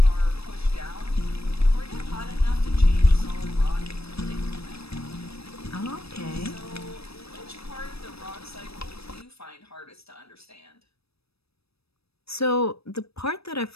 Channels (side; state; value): right; late; 0.78 ms